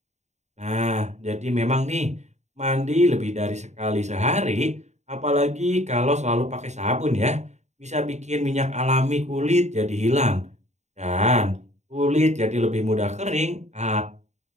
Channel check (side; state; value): left; late; 0.33 ms